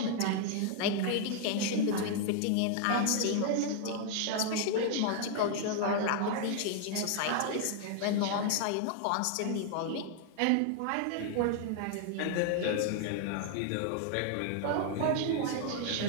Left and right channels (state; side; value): different; both; correlation 0.00